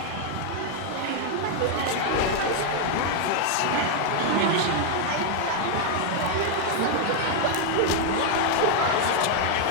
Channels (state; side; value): different; both; correlation 0.00